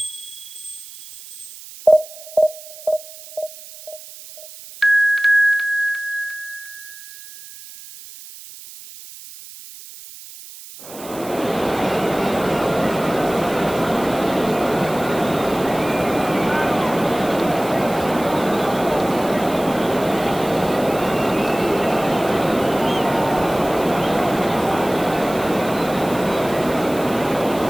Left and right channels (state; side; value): noise; right; hiss, 16 dB below the sound